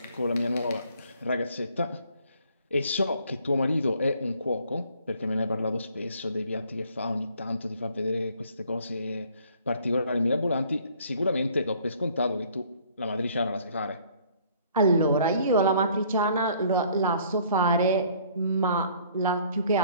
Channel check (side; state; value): both; inverted; correlation -0.58